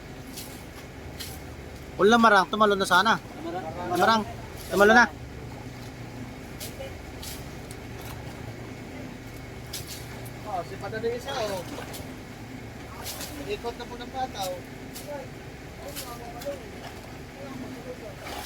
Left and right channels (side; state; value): both; identical; correlation 1.00